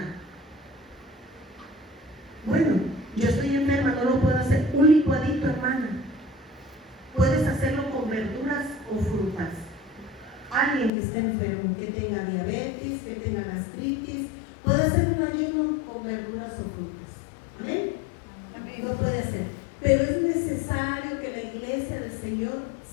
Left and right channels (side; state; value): right; drops out; at 10.9 s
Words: Bueno, yo estoy enferma, no lo puedo hacer. Un licuadito, hermana. Puedes hacerlo con verduras o frutas. Alguien que esté enfermo, que tenga diabetes, que tenga gastritis, puede hacer un ayuno con verduras o frutas. ¿Amén? Lo puede hacer. Pero es necesario que la iglesia del Señor